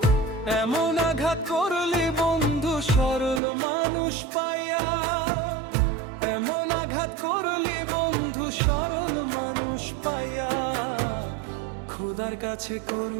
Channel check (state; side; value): drops out; left; at 3.4 s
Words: এমন আঘাত করলি বন্ধু সরল মানুষ পাইয়া, এমন আঘাত করলি বন্ধু সরল মানুষ পাইয়া। খোদার কাছে